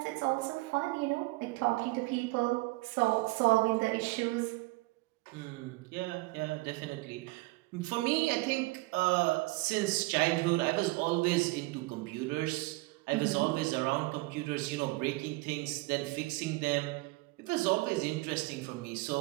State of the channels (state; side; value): quieter; left; 22.9 dB